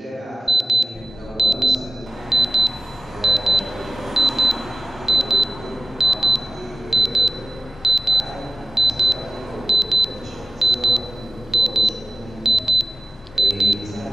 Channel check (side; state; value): both; normal; correlation 0.92